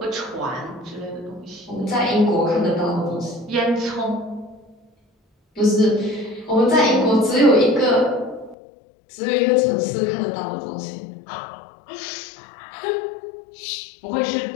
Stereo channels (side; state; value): right; drops out; at 8.6 s